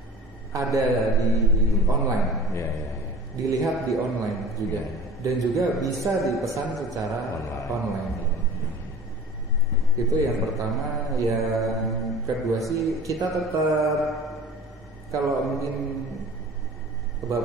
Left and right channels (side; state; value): both; normal; correlation 0.41